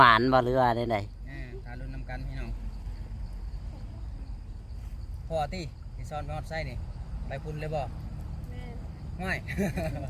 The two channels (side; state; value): both; identical; correlation 1.00